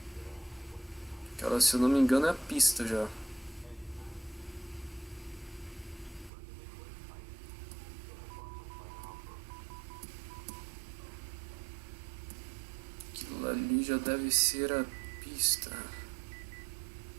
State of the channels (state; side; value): drops out; left; at 6.3 s